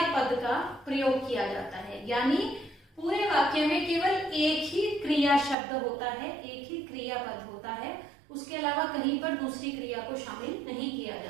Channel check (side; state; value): left; drops out; at 5.6 s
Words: पद का प्रयोग किया जाता है, यानी पूरे वाक्य में केवल एक ही क्रिया शब्द होता है, एक ही क्रिया पद होता है, उसके अलावा कहीं पर दूसरी क्रिया को शामिल नहीं किया